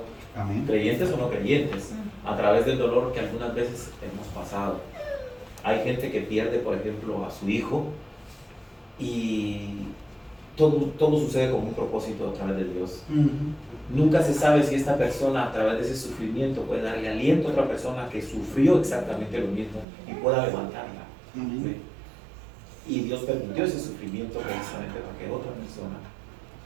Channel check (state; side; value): drops out; left; at 19.9 s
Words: Amén. creyentes o no creyentes, a través del dolor que algunas veces hemos pasado. Hay gente que pierde, por ejemplo, a su hijo y todo sucede con un propósito a través de Dios. Nunca se sabe si esta persona a través de ese sufrimiento puede darle aliento a otra persona que sufrió exactamente lo mismo y pueda levantarla. Amén. ¿Sí? Y Dios permitió ese sufrimiento precisamente para que otra persona